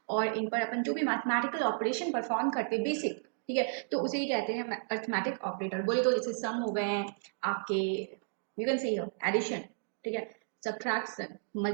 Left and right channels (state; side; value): silent; left; digital silence